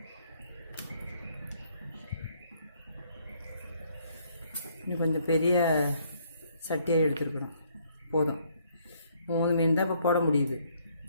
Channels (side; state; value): both; inverted; correlation -0.67